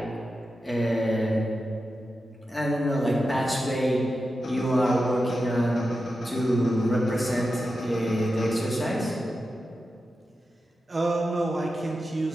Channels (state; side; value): normal; both; correlation 0.91